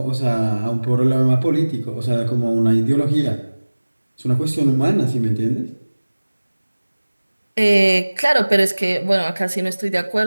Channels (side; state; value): both; inverted; correlation -1.00